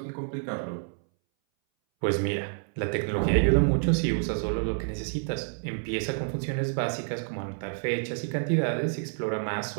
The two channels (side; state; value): left; silent; 59 dB below the other